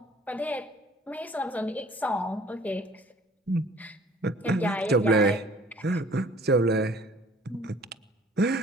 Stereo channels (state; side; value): normal; both; correlation 0.53